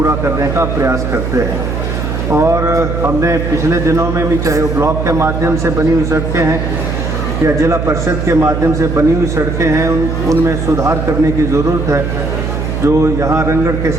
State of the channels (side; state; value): right; noise; hum, 3 dB below the sound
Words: करने का प्रयास करते हैं। और हमने पिछले दिनों में भी, चाहे वो ब्लॉक के माध्यम से बनी हुई सड़कें हैं या जिला परिषद के माध्यम से बनी हुई सड़कें हैं, उनमें सुधार करने की ज़रूरत है। जो यहाँ रंगड़ के